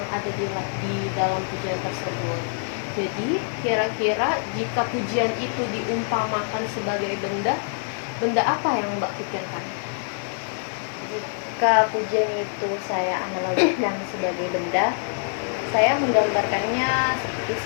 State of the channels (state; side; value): silent; right; digital silence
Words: ada di dalam pujian tersebut. Jadi kira-kira jika pujian itu diumpamakan sebagai benda apa yang Mbak pikirkan? Jika pujian itu saya analogikan sebagai benda, saya menggambarkannya seperti